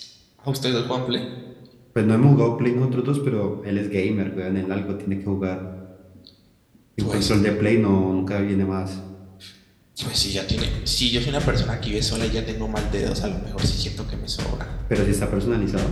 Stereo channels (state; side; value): identical; both; correlation 1.00